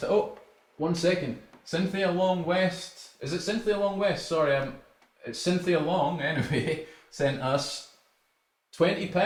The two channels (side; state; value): both; identical; correlation 1.00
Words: oh, 1 second. Cynthia Long West. Is it Cynthia Long West? Sorry, it's Cynthia Long, anyway, sent us